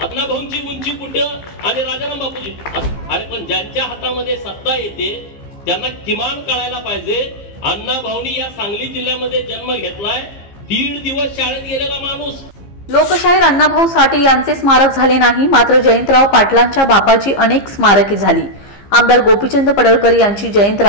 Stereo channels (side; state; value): right; late; 15 ms